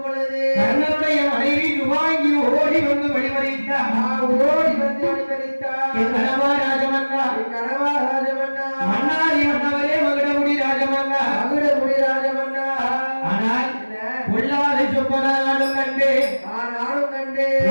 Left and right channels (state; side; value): inverted; both; correlation -1.00